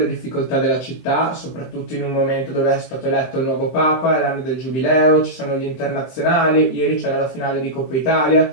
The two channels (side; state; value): right; late; 23 ms